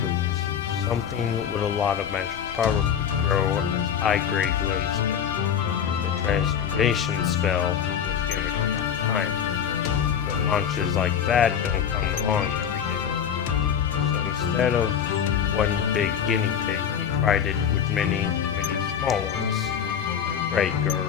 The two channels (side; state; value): right; quieter; 8.3 dB